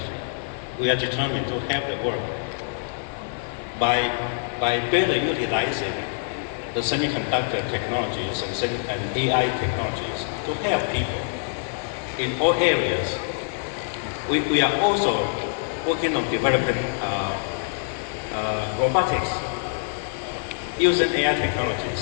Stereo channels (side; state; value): right; silent; 62 dB below the other